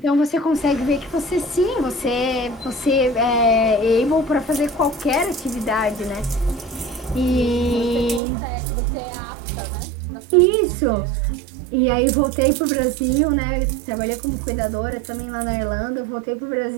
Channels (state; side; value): drops out; left; at 8.2 s